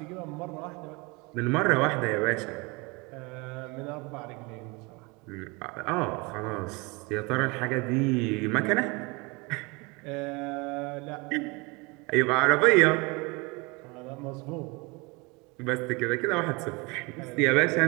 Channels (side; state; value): left; quieter; 27.1 dB